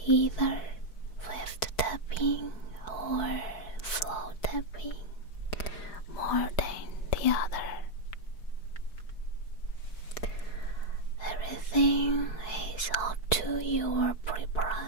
either swift tapping or slow tapping more than the other. Everything is up to your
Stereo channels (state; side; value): late; right; 4.6 ms